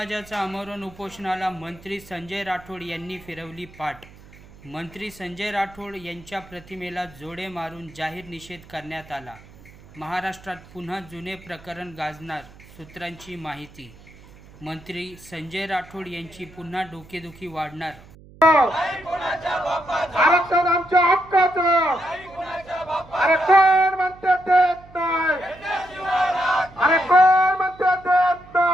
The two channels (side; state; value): right; noise; hum, 22 dB below the sound